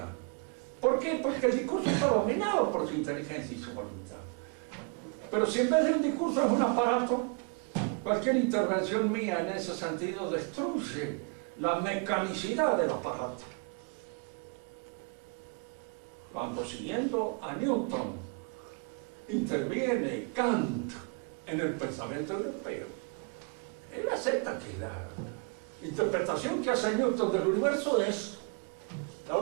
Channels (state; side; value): quieter; left; 38.1 dB